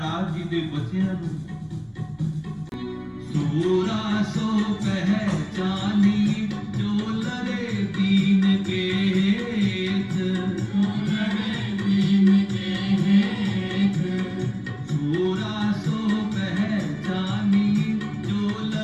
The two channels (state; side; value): identical; both; correlation 1.00